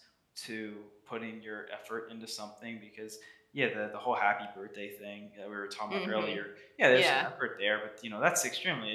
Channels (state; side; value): identical; both; correlation 1.00